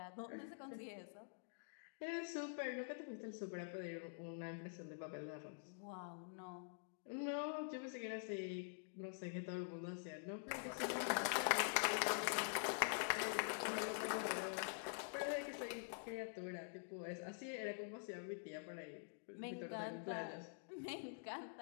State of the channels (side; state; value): right; silent; digital silence